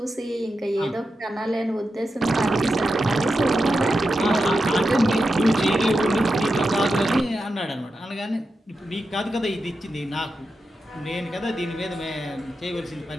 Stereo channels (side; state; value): both; normal; correlation 0.89